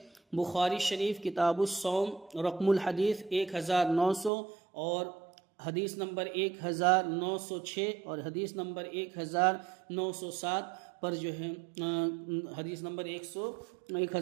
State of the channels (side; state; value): left; drops out; at 4.3 s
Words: بخاری شریف کتاب الصوم رقم الحدیث 1900 اور حدیث نمبر 1906 اور حدیث نمبر 1907 پر جو ہے حدیث نمبر